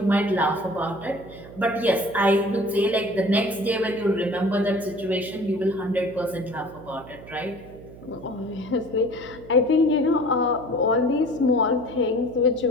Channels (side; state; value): right; noise; hum, 18 dB below the sound